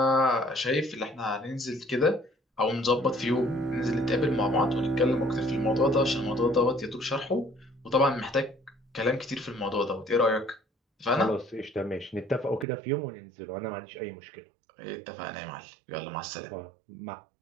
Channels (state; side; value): drops out; left; at 12.7 s